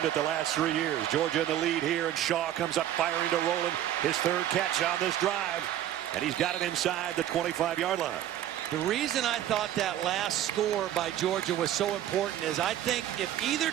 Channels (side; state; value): left; quieter; 11.9 dB